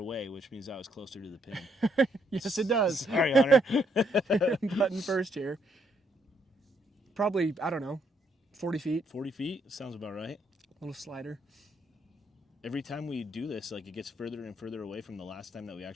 which means I was closer to the pin. Yes, it does. Sorry, Hunter. Button first here. Probably, I don't know, 40 feet. 40 feet? Sounds about right. Little slider. Every time we do this, like, it gets further and further away from the last time that we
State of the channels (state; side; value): normal; both; correlation 0.72